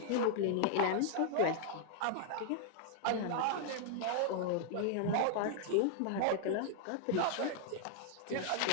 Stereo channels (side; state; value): both; different; correlation 0.00